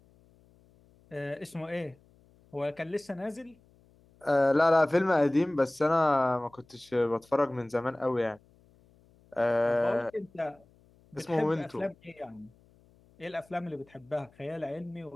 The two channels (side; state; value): left; noise; hum, 30 dB below the sound